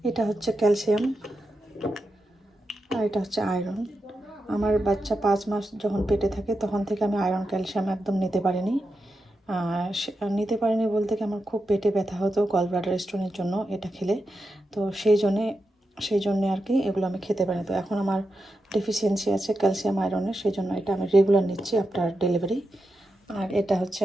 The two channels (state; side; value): normal; both; correlation 0.88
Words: এটা হচ্ছে ক্যালসিয়াম আর এটা হচ্ছে আয়রন। আমার বাচ্চা 5 মাস যখন পেটে থাকে তখন থেকে আমি আয়রন ক্যালসিয়াম একদম নিতে পারিনি। নিতে পারিনি বলতে কি আমার খুব পেটে ব্যথা হতো গল ব্লাডার স্টোনের জন্য এটা খেলে। তো সেই জন্যে আর কি এগুলো আমি খেতে পারিনি। তো এখন আমার ডেফিসিয়েন্সি আছে ক্যালসিয়াম আয়রনের, সেই জন্য এটা আমি রেগুলার নিচ্ছি আফটার ডেলিভারি। আর এটা হচ্ছে